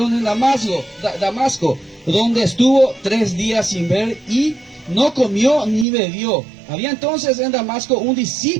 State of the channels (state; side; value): drops out; left; at 5.9 s